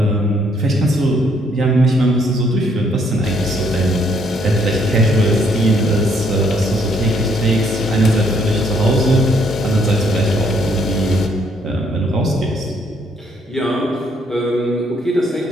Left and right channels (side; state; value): both; normal; correlation 0.69